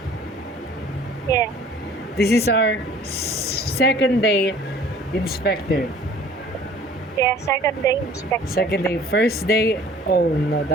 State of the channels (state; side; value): normal; both; correlation 0.51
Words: Yeah. This is our second day inspector. Yeah, second day inspection. Second day. First day, oh no,